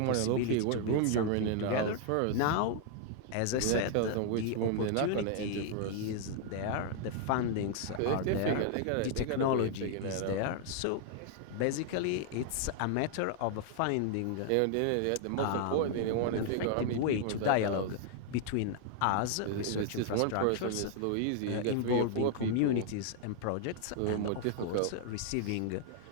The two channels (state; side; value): different; both; correlation 0.00